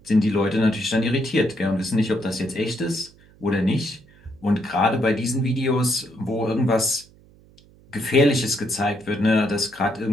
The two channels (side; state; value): right; noise; hum, 27 dB below the sound